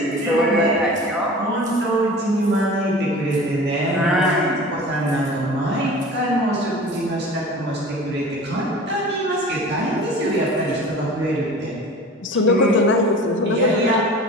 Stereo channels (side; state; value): both; normal; correlation 0.39